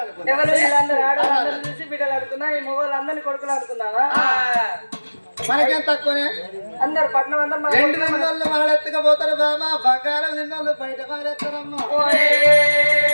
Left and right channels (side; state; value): both; inverted; correlation -1.00